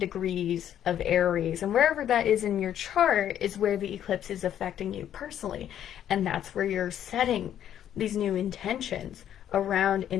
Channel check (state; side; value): quieter; right; 10.5 dB